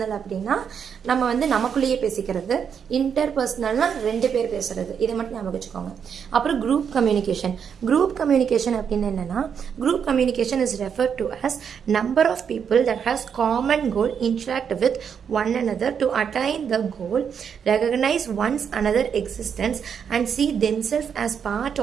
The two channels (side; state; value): left; quieter; 7.3 dB